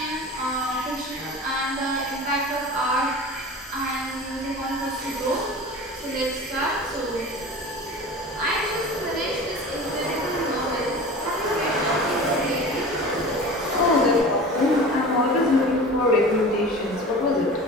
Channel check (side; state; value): both; normal; correlation 0.36